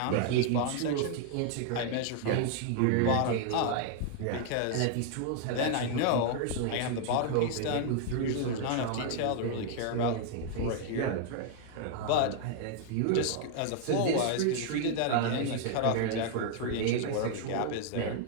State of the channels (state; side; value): different; both; correlation 0.00